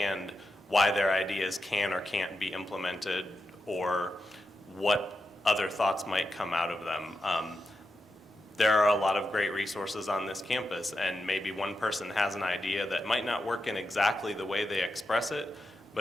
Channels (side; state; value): both; normal; correlation 0.88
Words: why their ideas can or can't be implemented, or what other thoughts might come out of them. There are a lot of great resources on this campus, and maybe one person has an idea that might not work in exactly the way they express it,